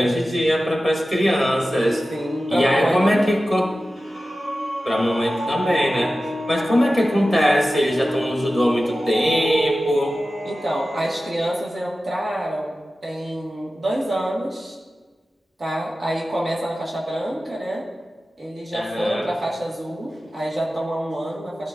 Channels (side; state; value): both; normal; correlation 0.94